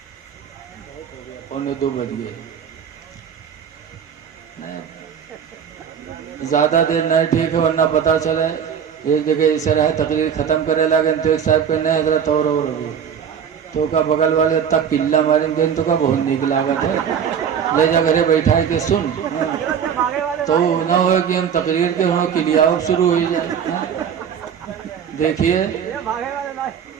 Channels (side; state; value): left; quieter; 7.8 dB